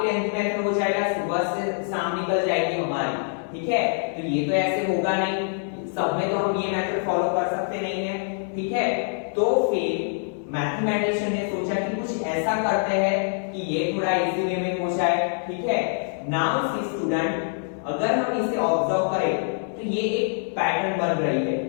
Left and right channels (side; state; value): right; silent; digital silence